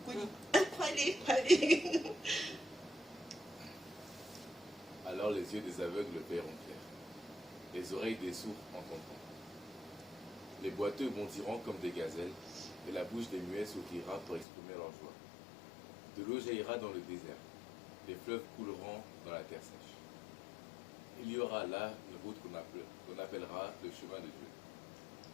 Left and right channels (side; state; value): right; drops out; at 14.5 s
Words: Croyez. Alors les yeux des aveugles verront clair, les oreilles des sourds entendront. Les boiteux bondiront comme des gazelles, et la bouche des muets s'ouvrira pour exprimer leur joie. De l'eau jaillira dans le désert, les fleuves couleront dans la terre sèche. Il y aura là une route qu'on appellera le chemin de Dieu.